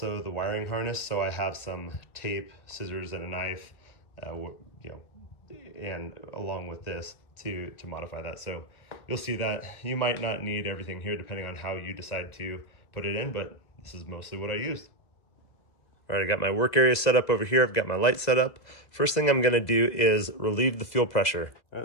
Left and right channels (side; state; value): right; late; 2.0 ms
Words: the wiring harness, so I have some tape, scissors, and a knife, you know, and along with this to modify that. So you'll see that you might not need everything here depending on how you decide to put it in, but this is mostly what I used. All right, I got my work area set up over here. I've got my light set up. First thing I'm gonna do is relieve the fuel pressure. All